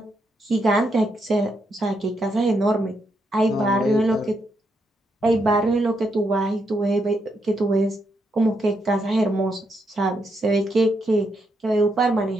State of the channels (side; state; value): both; normal; correlation 0.79